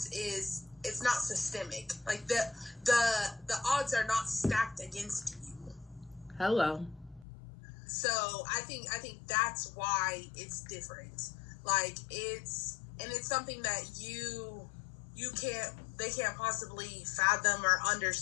is it's not systemic. Like, the odds are not stacked against you. Hello. So I think that's why it's different. Like, it's something that they can't possibly fathom or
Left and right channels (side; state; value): right; drops out; at 7.2 s